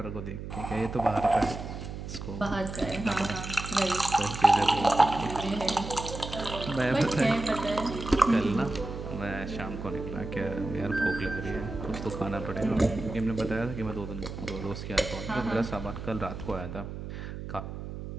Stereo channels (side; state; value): right; noise; hum, 8 dB below the sound